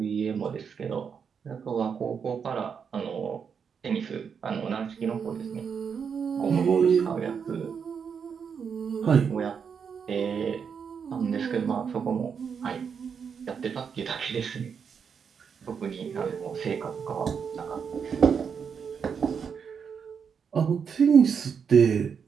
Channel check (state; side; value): quieter; left; 6.6 dB